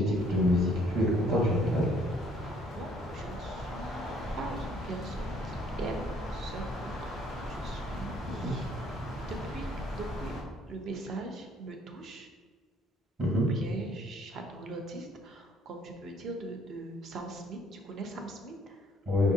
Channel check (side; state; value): both; normal; correlation 0.63